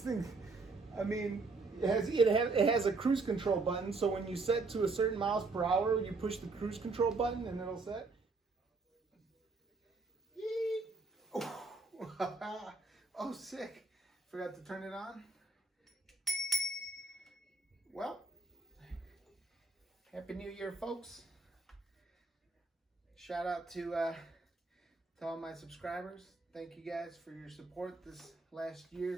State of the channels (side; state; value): left; quieter; 3.7 dB